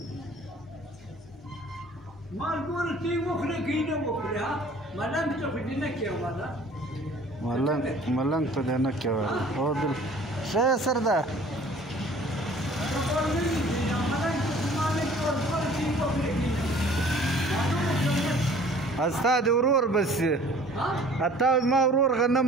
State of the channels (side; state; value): both; normal; correlation 0.51